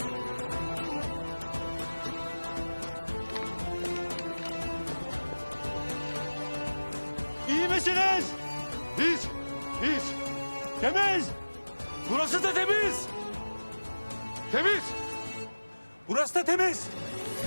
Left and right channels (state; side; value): inverted; both; correlation -1.00